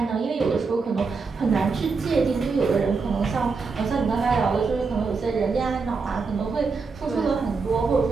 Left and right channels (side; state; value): left; quieter; 4.6 dB